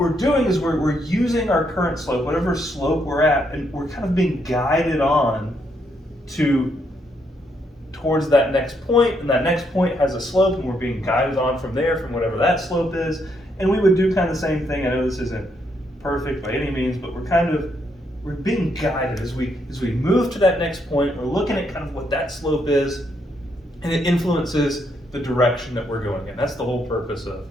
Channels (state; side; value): normal; both; correlation 0.76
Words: doing is we're using our current slope, whatever slope we're at, and we're kind of being guided on towards that next point, and that next point has a slope, and we're being guided on from there, from whatever that slope is. And we would do kind of the same thing. I know this isn't perfect by any means, but we're being guided as we move to that next point. We're looking at kind of what that slope is, and it influences the direction that we're going in. That's the whole purpose of